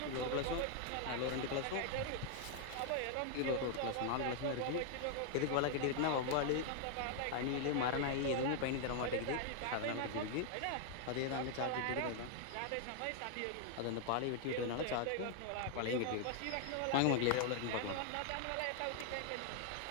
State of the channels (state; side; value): different; both; correlation 0.00